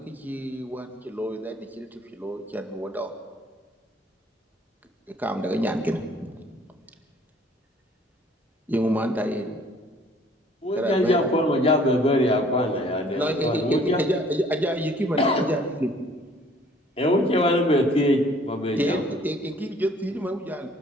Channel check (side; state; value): both; normal; correlation 0.57